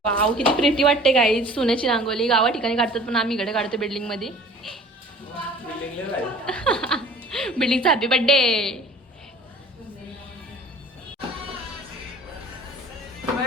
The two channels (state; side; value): normal; both; correlation 0.47